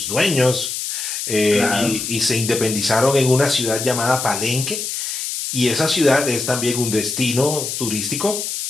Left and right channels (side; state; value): left; noise; hiss, 4 dB below the sound